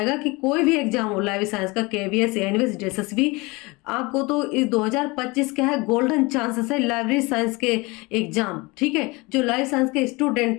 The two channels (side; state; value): right; quieter; 24.8 dB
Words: कि कोई भी एग्जाम हो, लाइव साइंस का, केवीएस, एनवीएस, एसएसबी, आपको तो इस 2025 का है गोल्डन चांसेस है लाइब्रेरी साइंस के एग्जाम। ठीक है, जो लाइव साइंस के